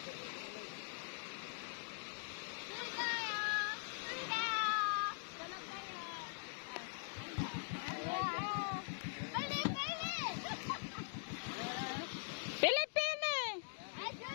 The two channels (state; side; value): silent; right; digital silence